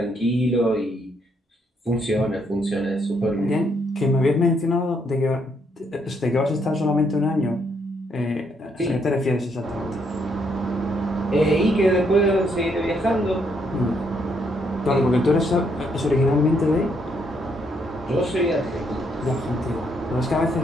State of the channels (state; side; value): normal; both; correlation 0.73